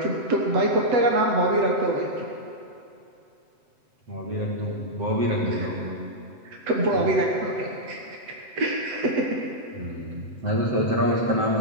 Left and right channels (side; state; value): left; late; 7.8 ms